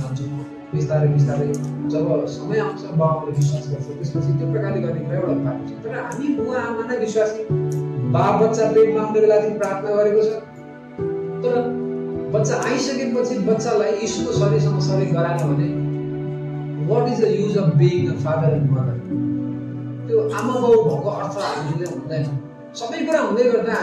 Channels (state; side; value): identical; both; correlation 1.00